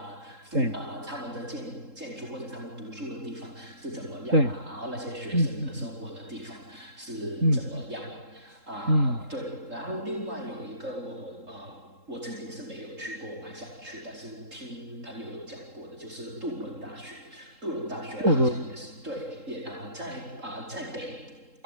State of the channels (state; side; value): late; left; 3.7 ms